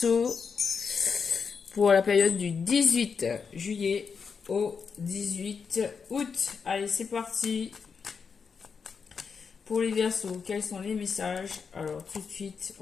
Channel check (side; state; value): right; quieter; 5.8 dB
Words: pour la période du 18 juillet au 18 août. Allez, c'est parti pour les Verseaux. Quels sont les messages? Alors tout de suite,